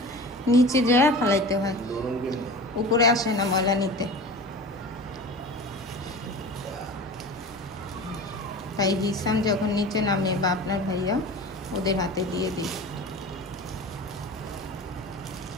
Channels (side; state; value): both; normal; correlation 0.35